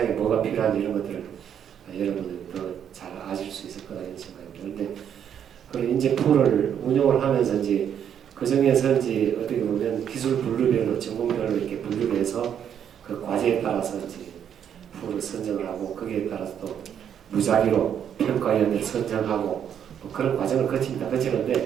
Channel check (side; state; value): left; quieter; 8.8 dB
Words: 뭐가 필요한지 이런 것들을 여러분들 더 잘 아실 수 있을 거라는 생각입니다. 그런데 그런 인재풀을 운영을 하면서 이제 그 중에서 이제 어떻게 보면 기술 분류별로 전공별로 이렇게 분류를 해서 그 과제에 따라서 이제 풀을 선정을 하고, 거기에 따라서 또 무작위로 평가위원을 선정하고 뭐 그런 과정을